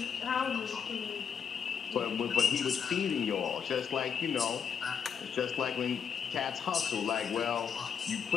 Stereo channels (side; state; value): right; quieter; 7.0 dB